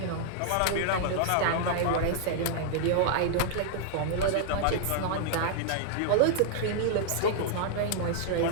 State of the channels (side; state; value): both; different; correlation -0.01